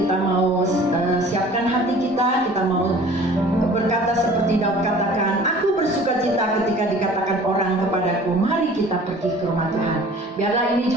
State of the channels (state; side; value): normal; both; correlation 0.47